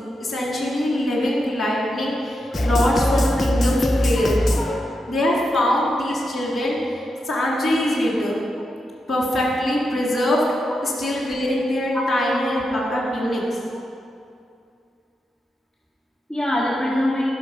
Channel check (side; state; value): both; normal; correlation 0.86